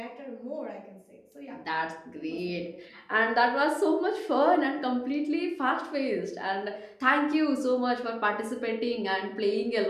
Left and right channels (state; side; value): identical; both; correlation 1.00